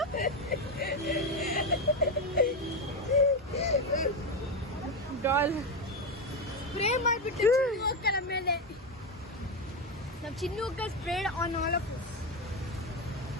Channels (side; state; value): both; normal; correlation 0.12